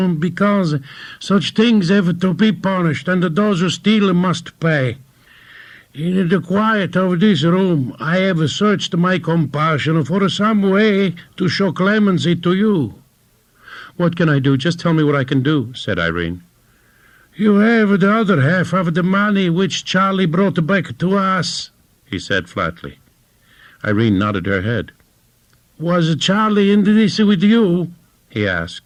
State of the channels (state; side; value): identical; both; correlation 1.00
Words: because such things have to be punished and those who steal must pay. In the quiet of this room, I have searched my compassion for some way to show clemency to you. What can I do? Just tell me what I can do, said Irene. You have the other half of the money which Charlie brought back to us, he said flatly. Irene nodded her head. Was Charlie in this with you? He